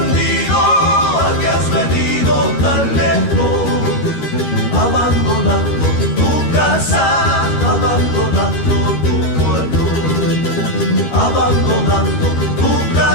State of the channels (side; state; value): right; late; 13 ms